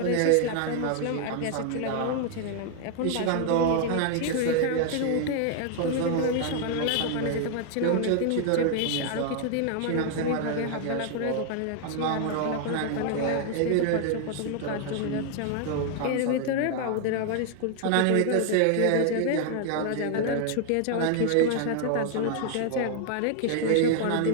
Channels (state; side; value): different; both; correlation 0.00